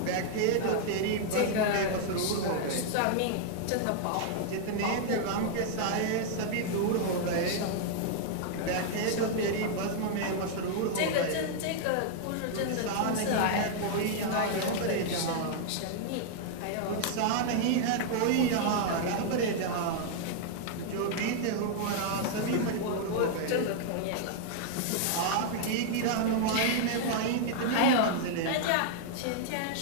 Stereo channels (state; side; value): different; both; correlation -0.01